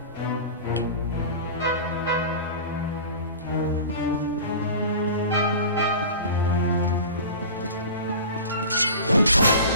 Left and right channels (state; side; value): inverted; both; correlation -0.35